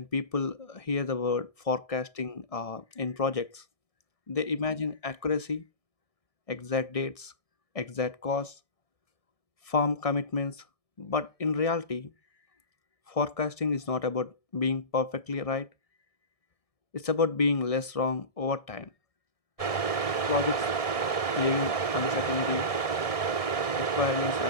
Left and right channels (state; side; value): late; right; 1.7 ms